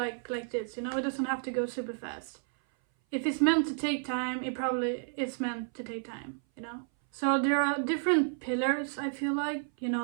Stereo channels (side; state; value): left; silent; 57 dB below the other